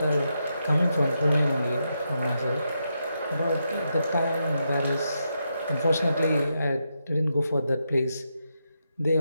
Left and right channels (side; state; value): both; inverted; correlation -0.84